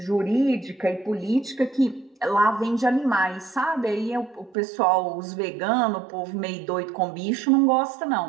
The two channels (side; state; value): left; drops out; at 4.5 s